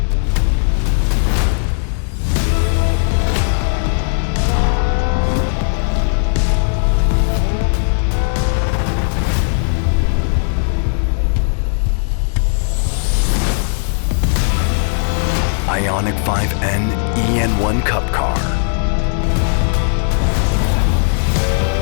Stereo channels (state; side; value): silent; right; 69 dB below the other